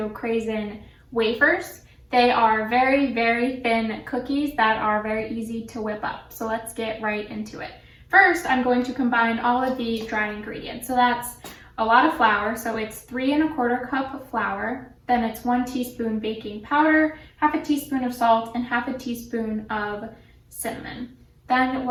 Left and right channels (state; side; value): identical; both; correlation 1.00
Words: craisin wafers. They are very, very thin cookies that are very easy to whip up. So let's get right into it. First, I'm going to combine all of the dry ingredients. So that's a lot of flour. So it's 3 1/4 cup of flour. Then it's 1 teaspoon baking powder, half a teaspoon of salt, and half a teaspoon of cinnamon. Then